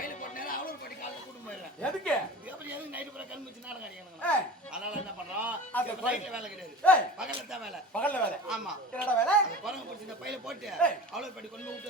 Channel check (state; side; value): normal; both; correlation 0.36